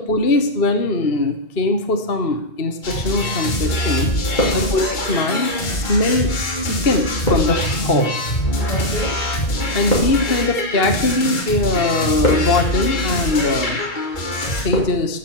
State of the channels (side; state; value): right; late; 2.3 ms